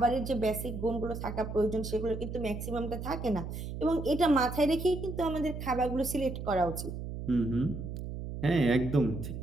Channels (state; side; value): noise; right; hum, 7 dB below the sound